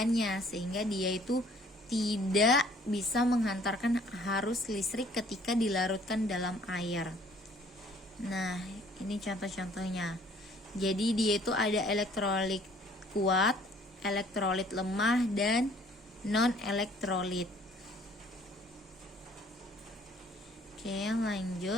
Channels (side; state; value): both; normal; correlation 0.58